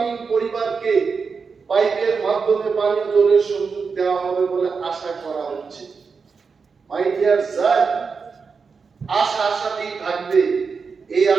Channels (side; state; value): left; quieter; 5.2 dB